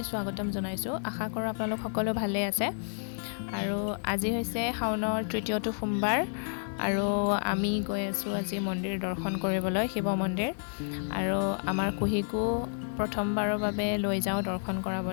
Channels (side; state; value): right; silent; 58 dB below the other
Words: স্বাগতম জনাইছো। আশা কৰোঁ আপোনালোক সকলো ভালে আছে। আৰু আজি হৈছে শাওনৰ তৃতীয়টো সোমবাৰ আৰু আমি গৈ আছো আজি মন্দিৰ দৰ্শন কৰিবলৈ শিৱ মন্দিৰ আৰু আমাৰ কুহিকো প্ৰথমবাৰৰ বাবে লৈ যাওঁ দৰ্শন